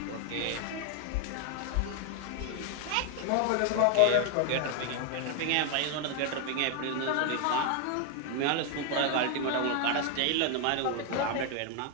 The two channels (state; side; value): different; both; correlation 0.00